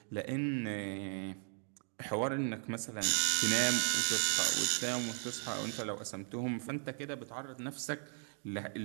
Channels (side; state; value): left; silent; 53 dB below the other